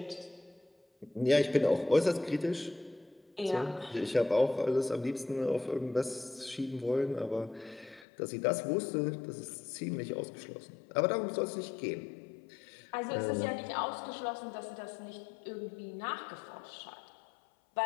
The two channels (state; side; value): drops out; right; at 8.1 s